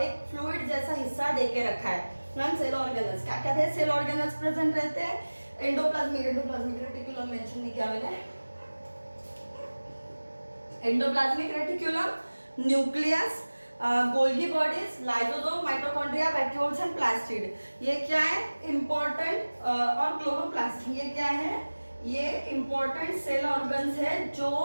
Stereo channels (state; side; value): inverted; both; correlation -1.00